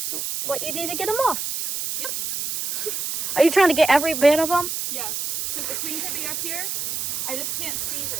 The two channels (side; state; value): right; noise; hiss, 3 dB below the sound